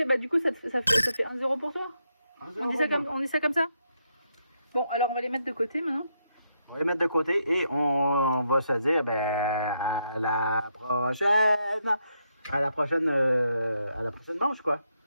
Bah du coup, ça fait 1 euro pour toi. On dit ça comme ça? Bon, alors on va les mettre de côté, maintenant. On va les mettre de côté et on va se dire, ben, à la prochaine. À la prochaine manche, quoi.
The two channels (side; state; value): both; inverted; correlation -0.79